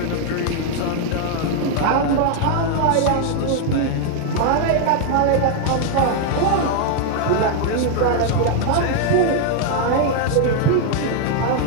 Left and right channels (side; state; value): both; different; correlation 0.00